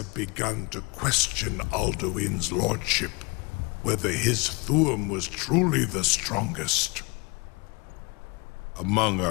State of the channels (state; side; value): quieter; right; 28.5 dB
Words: begun to question Alduin's lordship, whether his Thuum was truly the strongest. Among